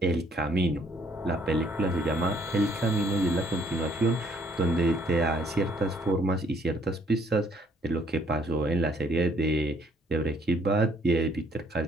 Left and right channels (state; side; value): normal; both; correlation 0.64